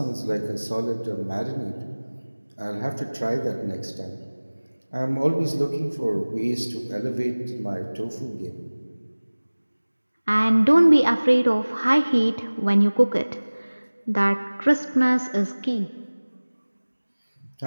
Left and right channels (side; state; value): both; inverted; correlation -1.00